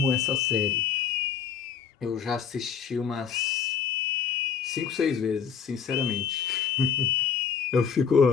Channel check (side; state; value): right; quieter; 7.0 dB